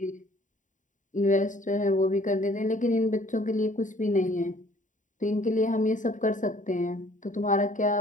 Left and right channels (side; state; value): right; late; 0.37 ms